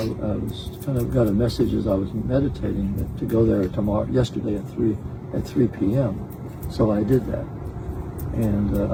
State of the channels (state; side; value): identical; both; correlation 1.00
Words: was kind of got a message as I was meditating that to go there yesterday at 3 p.m. So I did that, and